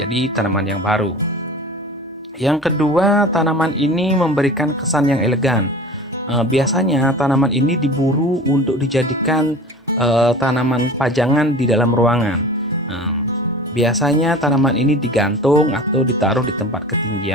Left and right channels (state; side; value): normal; both; correlation 0.38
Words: tanaman yang baru. Yang kedua, tanaman ini memberikan kesan yang elegan. Biasanya tanaman ini diburu untuk dijadikan tanaman pajangan di dalam ruangan. Biasanya tanaman ini digantung atau ditaruh di tempat